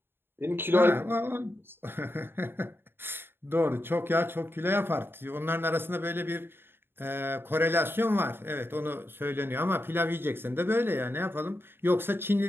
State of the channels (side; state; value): left; late; 0.11 ms